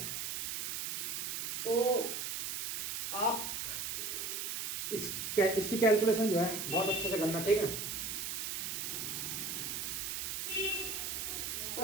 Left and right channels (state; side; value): noise; right; hiss, 2 dB below the sound